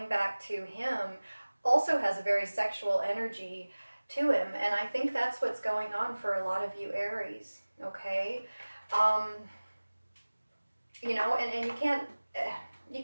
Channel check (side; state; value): both; inverted; correlation -1.00